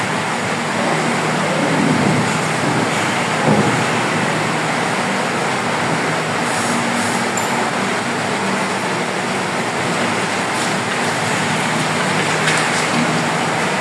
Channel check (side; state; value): both; identical; correlation 1.00